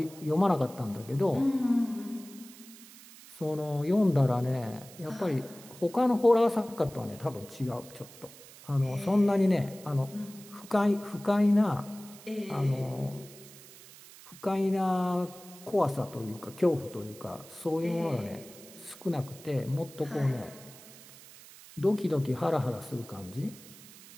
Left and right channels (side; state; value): right; noise; hiss, 19 dB below the sound